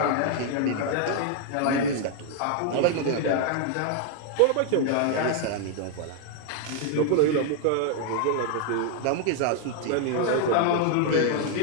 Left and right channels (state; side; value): different; both; correlation 0.00